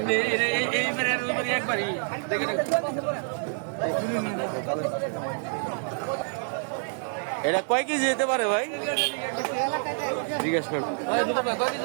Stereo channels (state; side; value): silent; left; 60 dB below the other